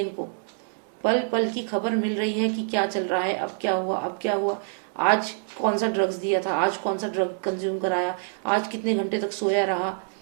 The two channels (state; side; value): silent; left; digital silence